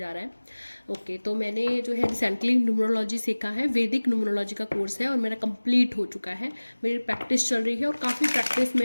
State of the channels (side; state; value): both; inverted; correlation -1.00